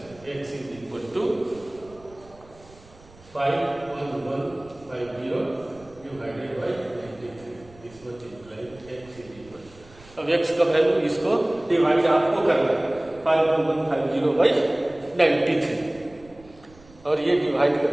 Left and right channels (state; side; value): noise; right; rumble, 24 dB below the sound